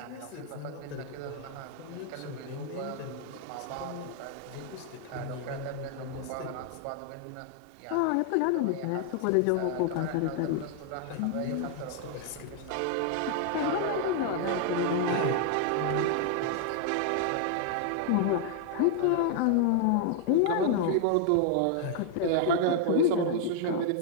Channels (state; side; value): different; both; correlation 0.00